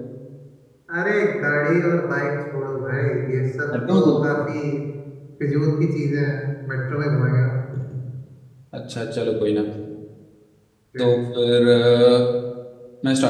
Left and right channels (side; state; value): both; identical; correlation 1.00